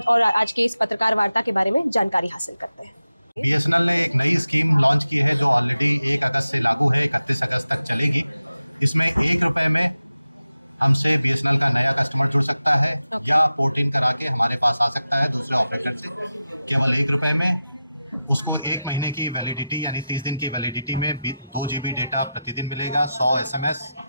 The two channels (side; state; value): both; inverted; correlation -0.92